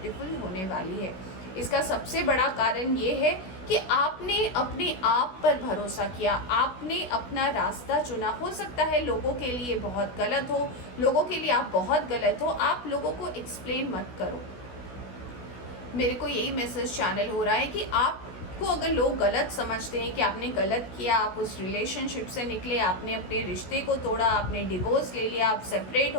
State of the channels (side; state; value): right; late; 16 ms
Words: होने वाली है। इसका सबसे बड़ा कारण ये है कि आपने अपने आप पर भरोसा किया, आपने अपना रास्ता चुना। हो सकता है लोगों के लिए बहुत गलत हो, लोगों के लिए आप बहुत गलत हो, आप लोगों को एक्सप्लेन मत करो। मेरे को यही मैसेज चैनल हो रहा है कि आपको अगर लोग गलत समझते हैं कि आपने गलत किया, आप उस रिलेशनशिप से निकले, आपने अपने रिश्ते को तोड़ा, आपने डिवोर्स ले लिया, आप सेपरेट